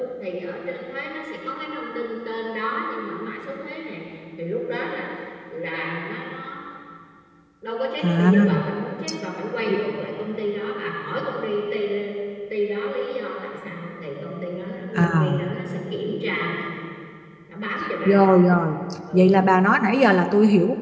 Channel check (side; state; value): both; identical; correlation 1.00